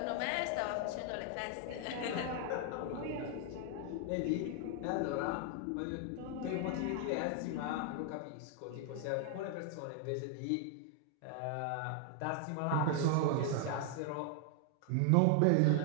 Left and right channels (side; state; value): both; different; correlation 0.00